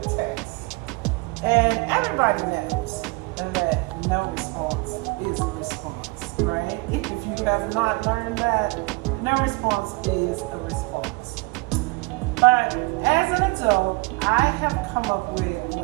text. And everybody knows that no response is a response, right? If you have not learned that, no response is a response. But as an adult, I have come up with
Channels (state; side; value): quieter; left; 25.8 dB